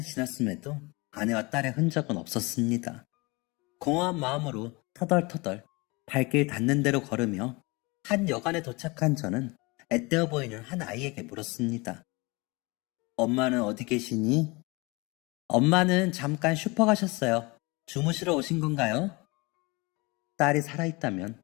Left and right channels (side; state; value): right; quieter; 25.8 dB